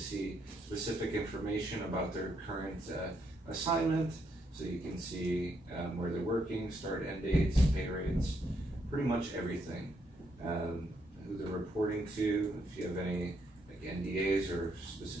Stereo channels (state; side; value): normal; both; correlation 0.76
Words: specific information about their current assignment. So you can see where they're working, start, end dates, pay rates, pretty much everything. Who they're reporting to, if you have any like NDAs or